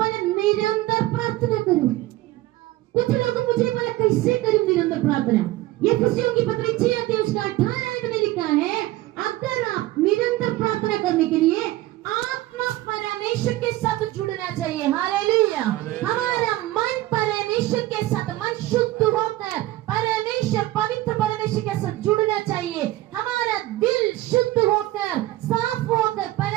निरंतर प्रार्थना करो। कुछ लोग मुझे बोला कैसे करूं निरंतर प्रार्थना? ये खुशियों की पत्री 6 अध्याय उसका 18 में लिखा है, अगर आप निरंतर प्रार्थना करने के लिए आत्मा परमेश्वर के साथ जुड़ना चाहिए। हालेलुया। हमारा मन परमेश्वर के साथ, मन शुद्ध होकर परमेश्वर, पवित्र परमेश्वर के साथ जुड़ना चाहिए। हमारा दिल शुद्ध होकर, साफ होकर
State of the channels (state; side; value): quieter; left; 16.9 dB